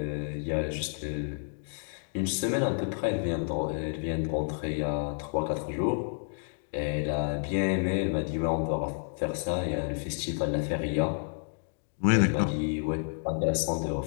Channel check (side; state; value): right; silent; digital silence